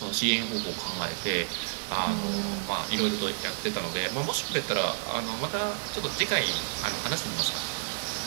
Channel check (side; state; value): left; silent; 58 dB below the other